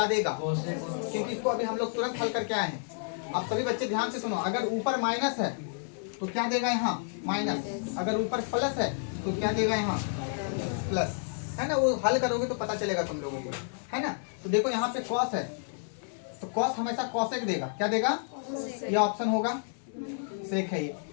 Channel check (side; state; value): right; silent; 58 dB below the other